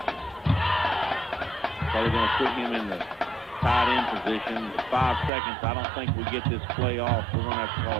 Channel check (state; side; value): drops out; left; at 5.3 s